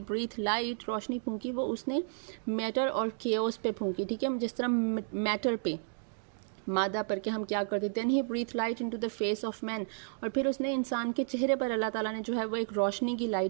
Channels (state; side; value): silent; left; digital silence